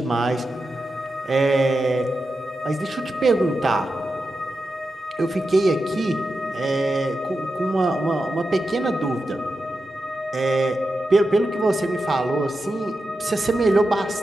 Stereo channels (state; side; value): normal; both; correlation 0.90